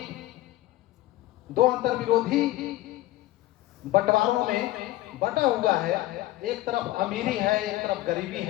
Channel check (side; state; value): right; quieter; 16.5 dB